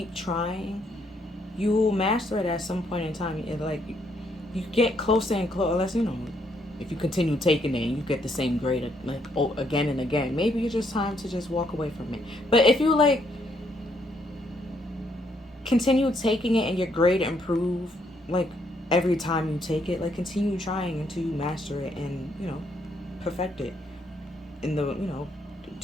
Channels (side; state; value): both; normal; correlation 0.73